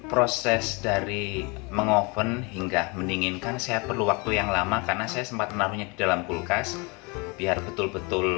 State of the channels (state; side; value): quieter; right; 29.3 dB